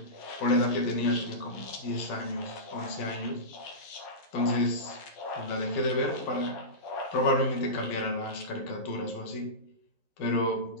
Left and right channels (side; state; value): right; late; 11 ms